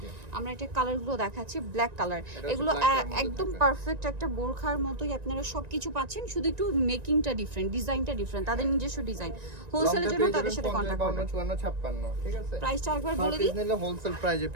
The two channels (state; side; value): late; left; 1.9 ms